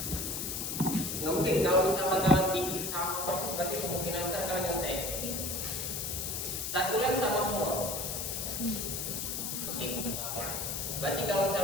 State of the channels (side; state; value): left; noise; hiss, 3 dB below the sound